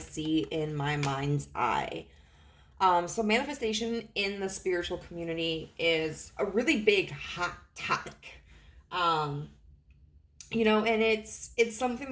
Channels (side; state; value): both; identical; correlation 1.00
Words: in my mind's eye. So manifestation in the spiritual community is a really big hot topic. And it's something